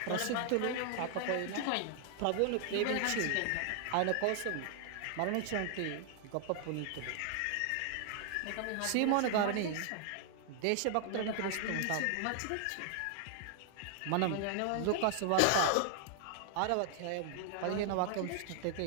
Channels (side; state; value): both; different; correlation 0.00